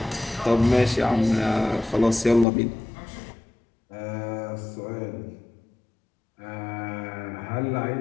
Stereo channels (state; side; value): drops out; right; at 2.5 s